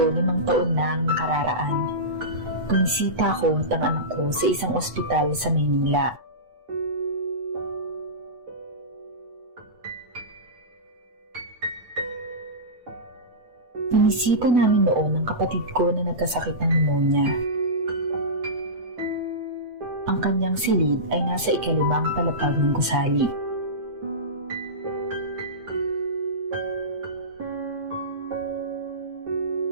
5 taon na ang nakararaan. Bumisita ko at ang anak ko sa isang ospital sa Maynila. Binisita namin noon ang kapatid ko na nagkasakit ng pneumonia. Ang kanyang silid ay nasa 5 palapag ng gusali.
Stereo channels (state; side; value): late; left; 8.1 ms